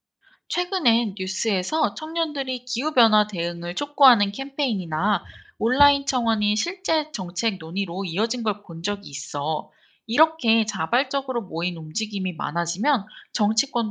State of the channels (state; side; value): identical; both; correlation 1.00